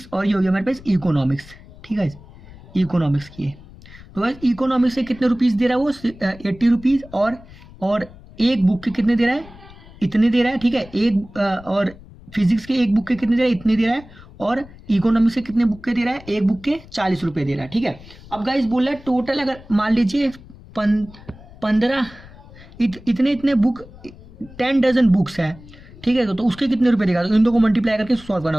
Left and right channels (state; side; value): noise; left; rumble, 20 dB below the sound